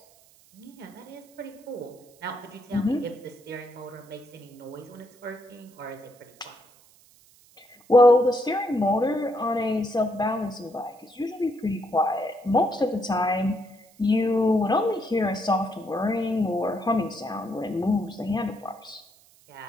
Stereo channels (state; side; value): noise; right; hiss, 28 dB below the sound